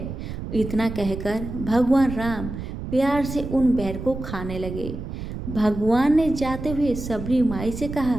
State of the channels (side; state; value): right; noise; rumble, 8 dB below the sound